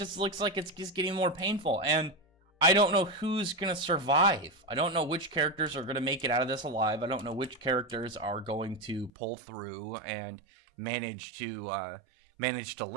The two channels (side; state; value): left; drops out; at 9.1 s